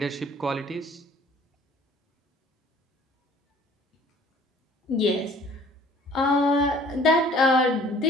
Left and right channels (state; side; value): normal; both; correlation 0.54